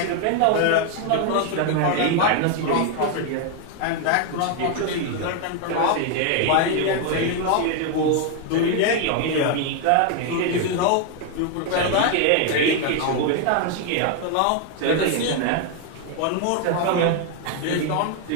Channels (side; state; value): both; different; correlation 0.00